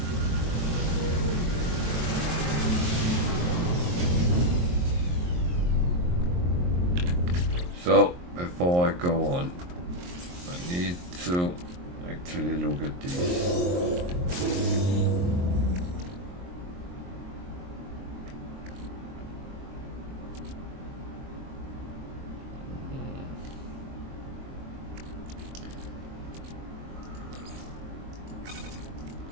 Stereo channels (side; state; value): left; late; 23 ms